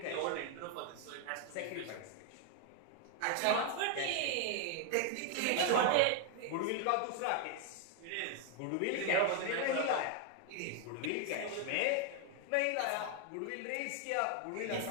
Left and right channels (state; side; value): different; both; correlation 0.01